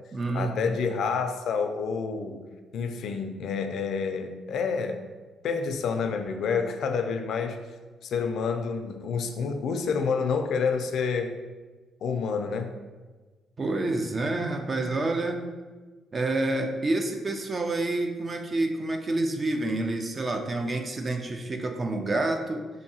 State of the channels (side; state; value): both; normal; correlation 0.75